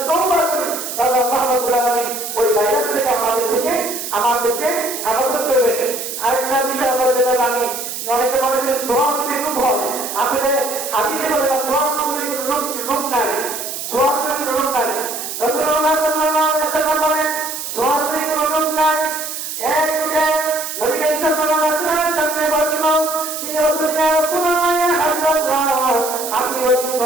তওবা করি, তাহলে আল্লাহ রাব্বুল আলামিন ওই ভাইরাস থেকে আমাদেরকে হেফাজত করবেন। আরেকটা বিষয় আমরা যেটা জানি, অনেকে মনে করে সোয়াশরীর রূপ হয়, আসলে হাদিসে বলে না সোয়াশরীর রূপ নাই, সোয়াশরীর রূপ নাই। রাসূলুল্লাহ সাল্লাল্লাহু আলাইহি ওয়াসাল্লাম বলেন সোয়াশরীর রূপ নাই। এক নবী সাল্লাল্লাহু আলাইহি ওয়াসাল্লামের সামনে বসলো, তিনি বললেন ইয়া রাসূলুল্লাহ ইয়া হাবিবাল্লাহ, আপনি ওই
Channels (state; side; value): noise; right; hiss, 6 dB below the sound